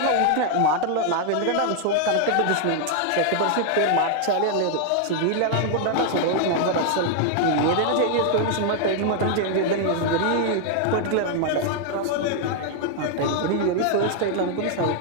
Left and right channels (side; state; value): both; different; correlation 0.00